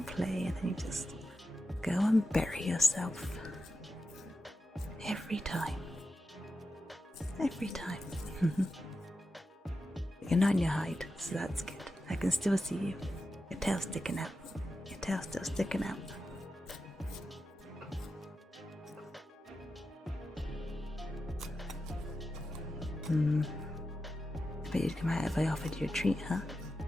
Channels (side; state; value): both; normal; correlation 0.90